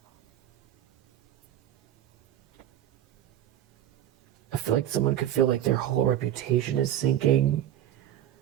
I feel like someone could feel like their whole reputation is sinking.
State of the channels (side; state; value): left; quieter; 11.6 dB